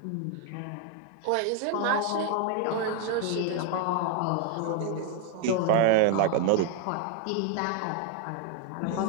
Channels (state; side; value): different; both; correlation 0.01